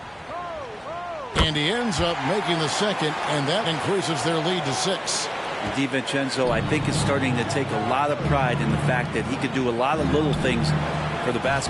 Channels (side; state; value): both; identical; correlation 1.00